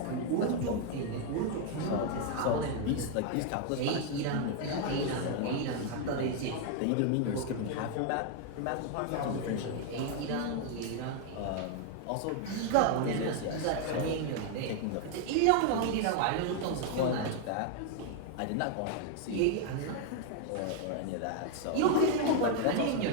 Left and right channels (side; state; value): both; different; correlation 0.00